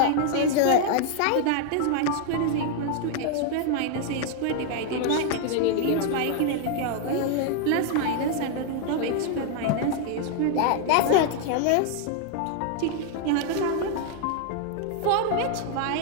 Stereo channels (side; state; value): both; different; correlation 0.00